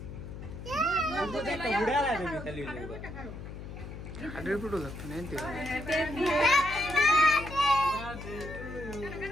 বুড়া লাগে খালি হাড়ের ফুটো লাগতো না এনতে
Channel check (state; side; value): noise; left; hum, 10 dB below the sound